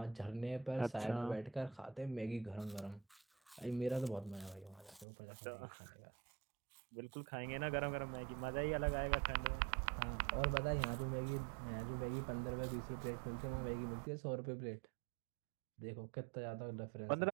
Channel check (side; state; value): left; drops out; at 5.1 s